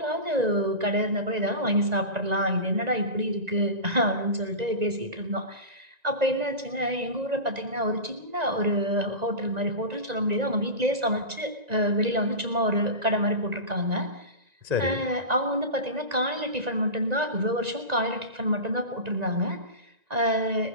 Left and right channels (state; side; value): late; left; 1.9 ms